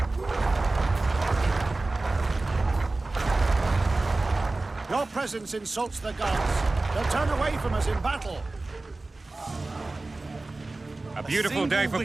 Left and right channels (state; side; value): quieter; left; 3.2 dB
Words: Your presence insults the gods. They'll turn away from us in battle. A beautiful day for